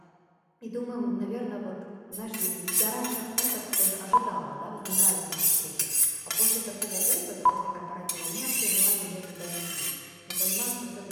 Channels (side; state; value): both; identical; correlation 1.00